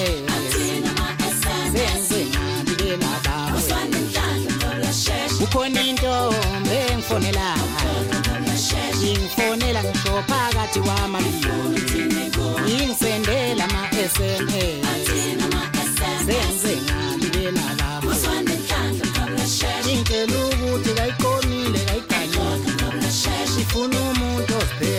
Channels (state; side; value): identical; both; correlation 1.00